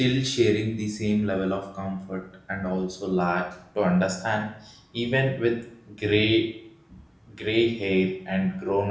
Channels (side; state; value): both; identical; correlation 1.00